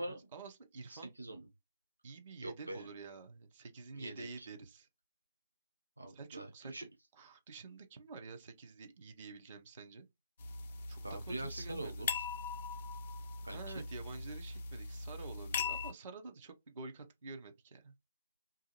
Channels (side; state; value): both; inverted; correlation -0.67